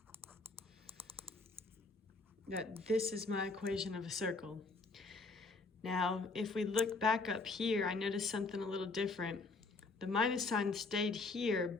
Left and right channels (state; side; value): quieter; right; 3.7 dB